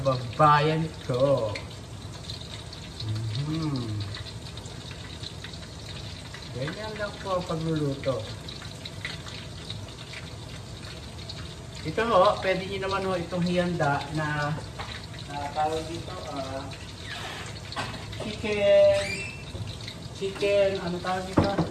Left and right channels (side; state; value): both; identical; correlation 1.00